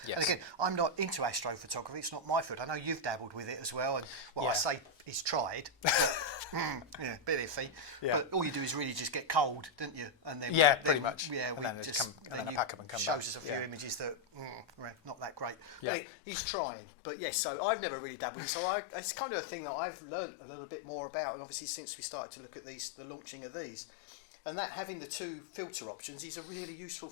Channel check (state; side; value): drops out; right; at 15.9 s